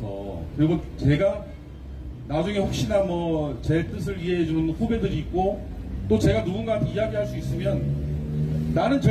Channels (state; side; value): identical; both; correlation 1.00